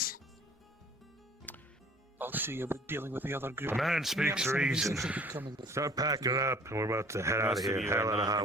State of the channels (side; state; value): both; normal; correlation 0.51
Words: I'll see about dealing with the other group. A man speaks Mercenaries reason. will be coming with Start packing it up, and we're about to head out Most of of here. you Hell are out of not high gonna